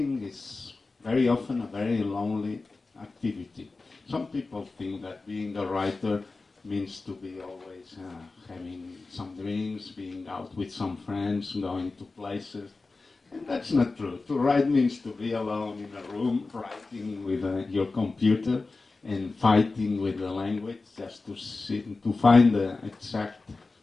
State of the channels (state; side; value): quieter; right; 3.7 dB